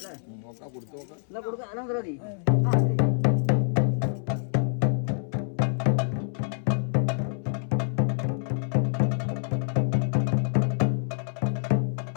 നോക്കാം കൊടുത്തു നോക്കാം.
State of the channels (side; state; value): right; silent; 60 dB below the other